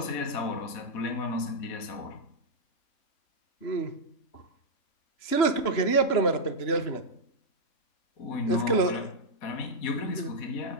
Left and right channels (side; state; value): right; late; 3.0 ms